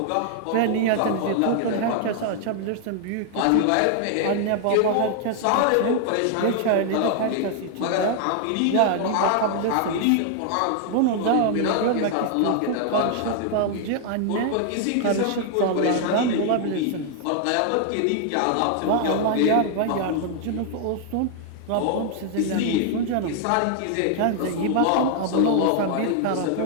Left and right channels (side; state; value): both; different; correlation 0.00